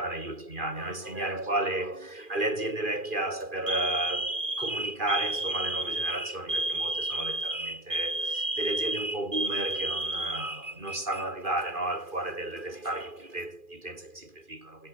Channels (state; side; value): late; left; 2.4 ms